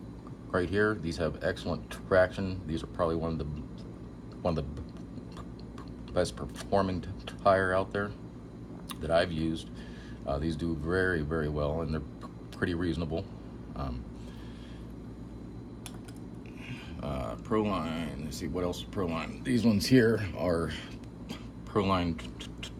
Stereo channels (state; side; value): identical; both; correlation 1.00